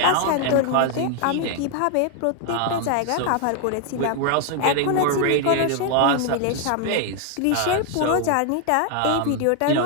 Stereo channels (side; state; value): both; different; correlation 0.00